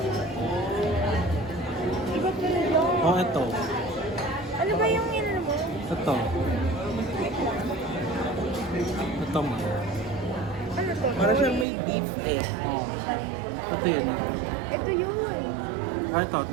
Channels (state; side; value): drops out; left; at 11.7 s